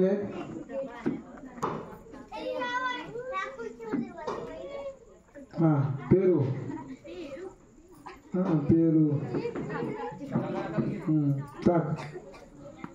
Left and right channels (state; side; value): identical; both; correlation 1.00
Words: आहेत. हा पेरू. हा पेरू. टाक.